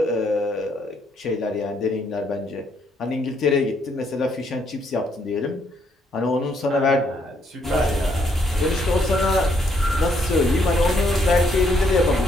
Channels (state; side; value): normal; both; correlation 0.72